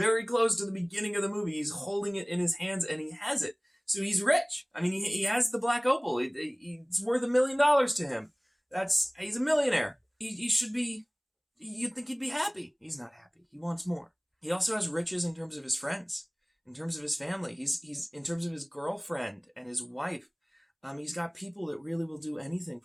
close to the beginning of the movie. He's holding it in his hands and he has it. So he's rich. I mean, he has the Black Opal. It's worth $1 million to him. He's a millionaire. He should be, you'd think he'd be happy. He's not happy. He wants more. He also has riches in terms of his friends, in terms of his family. He's in terms of his girlfriend and his wife. He's got people that really will do anything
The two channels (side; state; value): both; identical; correlation 1.00